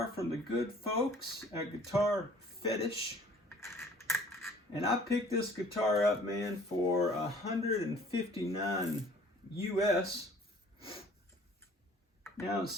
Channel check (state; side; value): normal; both; correlation 0.53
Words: from the good folks at Guitar Fetish. And I picked this guitar up, man, for $159 US. Now,